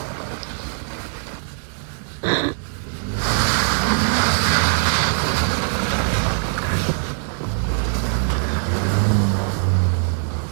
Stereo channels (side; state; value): left; silent; 59 dB below the other